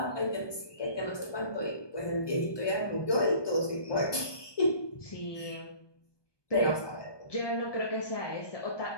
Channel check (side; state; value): right; late; 1.2 ms